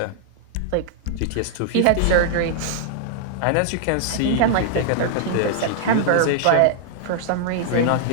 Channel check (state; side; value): different; both; correlation 0.00